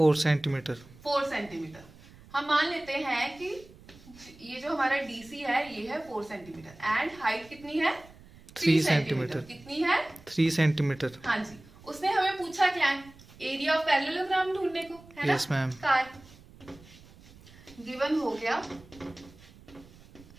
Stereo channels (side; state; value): right; noise; rumble, 23 dB below the sound